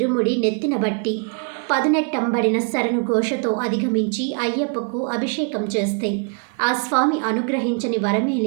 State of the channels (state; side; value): quieter; left; 39.0 dB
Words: నెత్తిన బట్టి పదునెట్టంబడిన శరణు ఘోషతో అధిగమించి అయ్యప్పకు అభిషేకం చేస్తే ఆ స్వామి అనుగ్రహించని వరమే